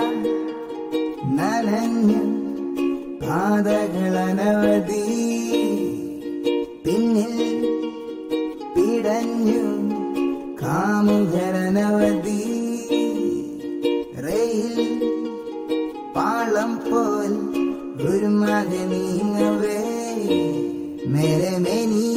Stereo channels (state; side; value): identical; both; correlation 1.00